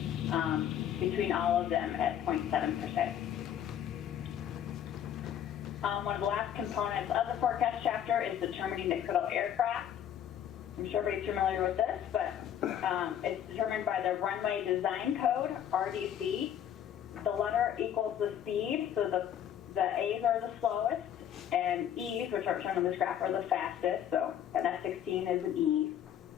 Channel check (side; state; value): right; quieter; 9.9 dB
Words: between all of them at 0.7%. One of the last components of the forecast chapter is determining the critical aircraft. I'm sure everybody's familiar with this, but it's determined by the Runway Design Code, RDC. The letter equals the speed, so the A's are the slowest, and E's, which are shown on this graph, are the fastest, so an F-16 is an E.